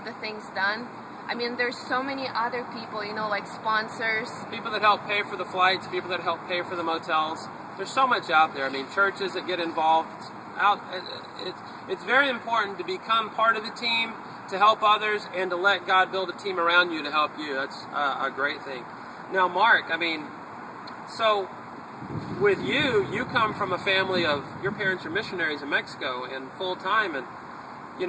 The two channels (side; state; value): both; identical; correlation 1.00